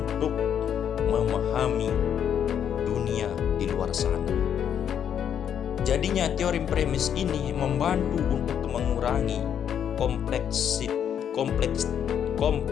memahami dunia di luar sana. Jadinya teori premis ini membantu untuk mengurangi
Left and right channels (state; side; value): quieter; right; 8.8 dB